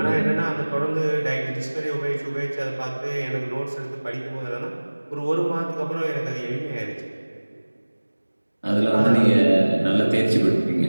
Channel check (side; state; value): both; inverted; correlation -1.00